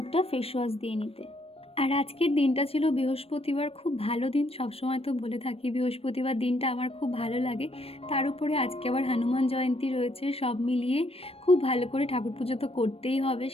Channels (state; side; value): late; right; 0.28 ms